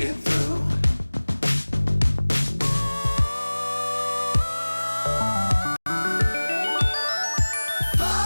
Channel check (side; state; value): both; inverted; correlation -1.00